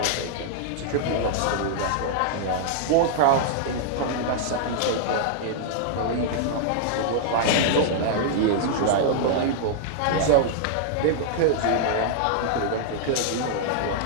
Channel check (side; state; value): both; different; correlation -0.01